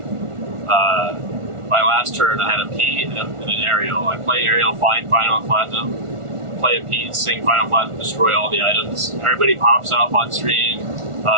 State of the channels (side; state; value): left; late; 1.4 ms